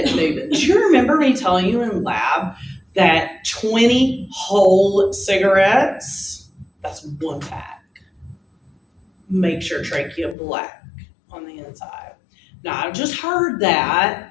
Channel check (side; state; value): right; drops out; at 10.4 s